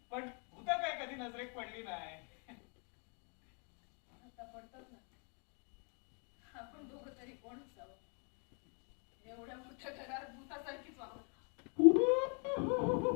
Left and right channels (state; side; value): quieter; right; 37.9 dB